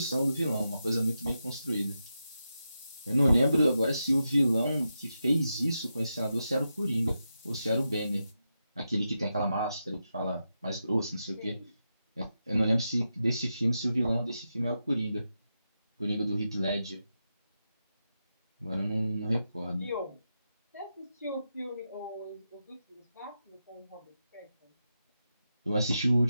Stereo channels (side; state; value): both; inverted; correlation -0.88